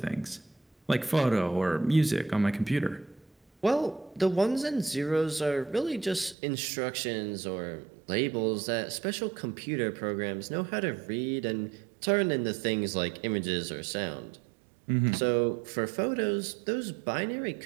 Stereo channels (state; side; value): drops out; left; at 6.4 s